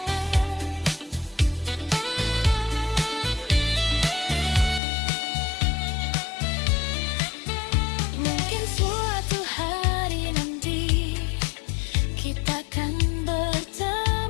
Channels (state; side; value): drops out; right; at 4.8 s